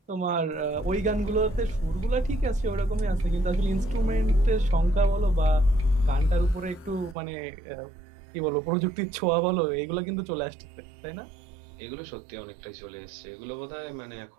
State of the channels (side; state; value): left; drops out; at 7.2 s